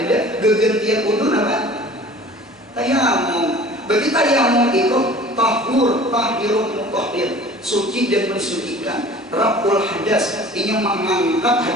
gegantian wudu apa? Tayamum. Berarti tayamum itu tahirun mutahhir, suci dan mensucikan. Raful hadas, ini mengangkat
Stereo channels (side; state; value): both; normal; correlation 0.45